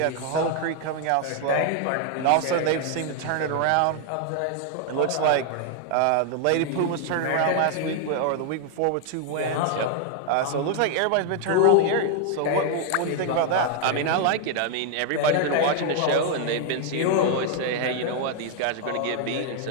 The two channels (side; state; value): both; different; correlation 0.00